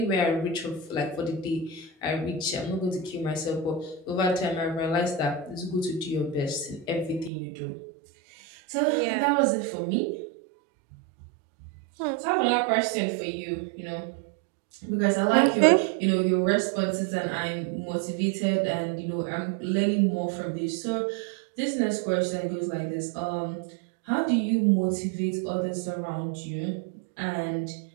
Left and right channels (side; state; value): left; drops out; at 7.3 s